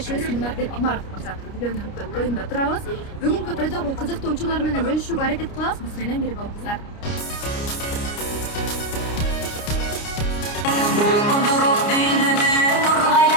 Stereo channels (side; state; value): right; late; 29 ms